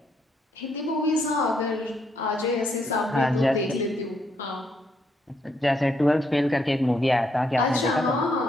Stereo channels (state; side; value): normal; both; correlation 0.75